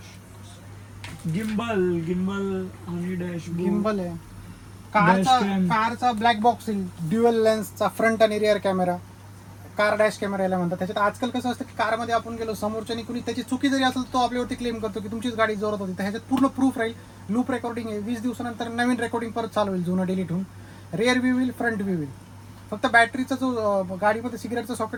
गिम्बल आणि डॅशबोर्ड. गिम्बल आहे. Dashcam. कारचा ब्लॅक बॉक्स येईल. ड्युअल लेन्सचा फ्रंट आणि rear camera. Car dash camera याला म्हणतात. त्याच्यात आजकाल कसं असतं की कारमध्ये आपण गेलो समोरच्यानी कुणी त्याची चुकी जरी असेल तो आपल्यावरती क्लेम करतो की तुमचीच गाडी जोरात होती. तर ह्याच्यात पूर्ण प्रूफ राहील. लूप रेकॉर्डिंग आहे. 20 दिवसानंतर नवीन रेकॉर्डिंग परत चालू होईल जुनं डिलीट होऊन. रिअर व्ह्यू होईल, फ्रंट व्ह्यू होईल. फक्त बॅटरीचा जो गाडीमध्ये सिगरेटचा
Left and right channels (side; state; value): both; identical; correlation 1.00